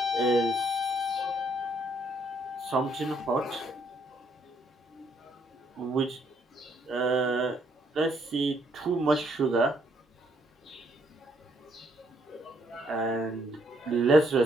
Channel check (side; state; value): both; normal; correlation 0.70